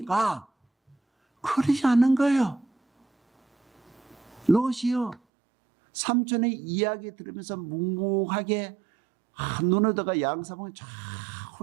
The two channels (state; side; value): drops out; left; at 5.2 s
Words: 그러지 않는 거예요. 롯이요, 삼촌의 이야기 들으면서 묵묵하게 눈을 떠가 양사방을 쫙